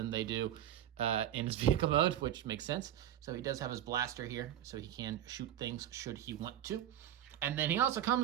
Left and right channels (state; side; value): quieter; left; 11.2 dB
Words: they do in his vehicle mode, which makes sense. So he does have his blaster here, so he can shoot things should he want to. And then he also